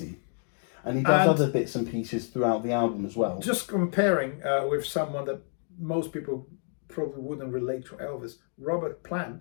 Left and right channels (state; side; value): silent; right; 59 dB below the other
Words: And he does other bits and pieces throughout the album as well. Just comparing with someone that most people probably wouldn't relate to Elvis, Robert